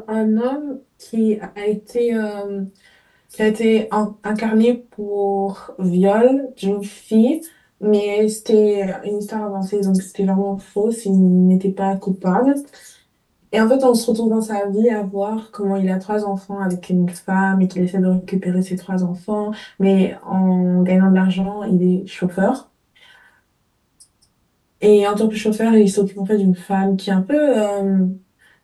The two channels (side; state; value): both; identical; correlation 1.00